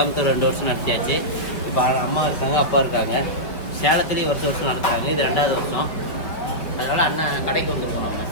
2 வருஷம் நடத்தியாச்சு. இப்போ அம்மா இருக்காங்க, அப்பா இருக்காங்க. சேலத்துலேயும் வருஷம் நடத்துகிறாங்க. இது 2வது வருஷம். அதனால் அண்ணன் கடைக்கு வந்துருக்கோம்.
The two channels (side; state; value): right; late; 4.7 ms